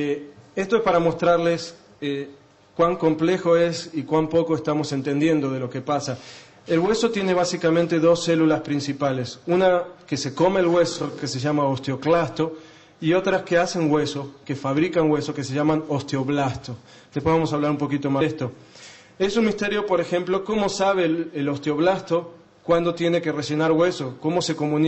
es para mostrarles cuán complejo es y cuán poco estamos entendiendo de lo que pasa. El hueso tiene básicamente dos células principales. Una que se come el hueso, que se llama osteoclasto, y otras que hacen hueso, que fabrican hueso, que se llaman osteoblasto. Después vamos a hablar un poquito más de esto. Es un misterio, por ejemplo, cómo sabe el osteoblasto cuándo tiene que rellenar hueso, cómo se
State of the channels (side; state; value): both; identical; correlation 1.00